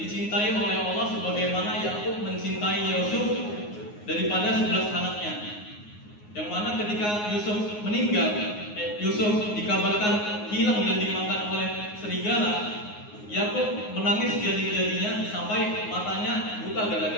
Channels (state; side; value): late; right; 9.6 ms